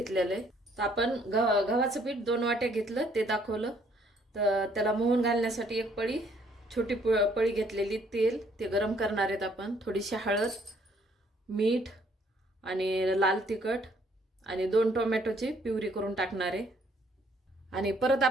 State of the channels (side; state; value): both; normal; correlation 0.65